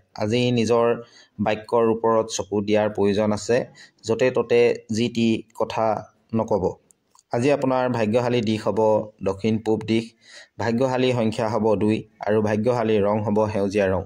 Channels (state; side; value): identical; both; correlation 1.00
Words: আজি নিজৰ বাক্যৰ ওপৰত চকু দিয়াৰ প্ৰয়োজন আছে। য'তে ত'তে যি টি কথা নক'ব। আজি আপোনাৰ ভাগ্যশালী দিশ হ'ব দক্ষিণ পূব দিশ। ভাগ্যশালী সংখ্যা হ'ব 2 আৰু ভাগ্যশালী ৰং হ'ব সেউজীয়া ৰং।